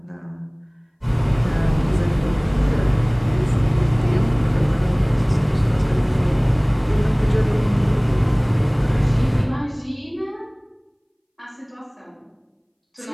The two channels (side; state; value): both; identical; correlation 1.00